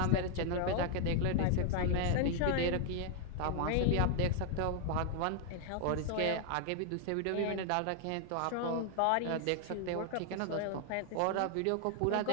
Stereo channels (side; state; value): both; different; correlation 0.00